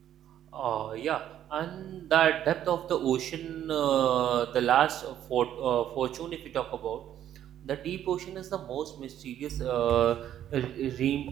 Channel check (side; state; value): left; quieter; 11.0 dB